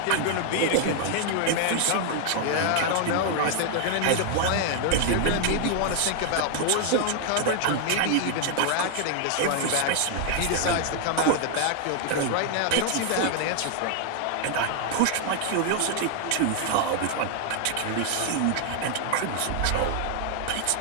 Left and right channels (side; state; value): both; different; correlation 0.00